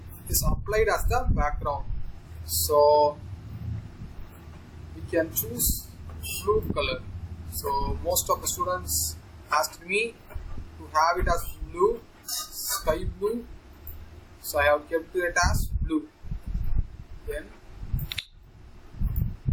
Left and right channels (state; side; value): identical; both; correlation 1.00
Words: is applied as the background. So we can choose blue color. So most of the students asked me to have it as blue, sky blue. So I have kept it as blue. Then